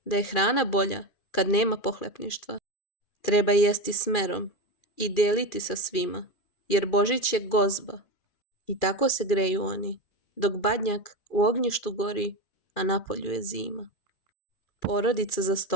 da je hrana bolja kad nema pohlepništva. Treba jesti smerom i deliti sa svima, jer Božić je gozba. I tako se greju oni, dok Badnjak u ognjištu gori, a napolju je zima. Porodica za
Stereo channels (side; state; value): right; late; 2.4 ms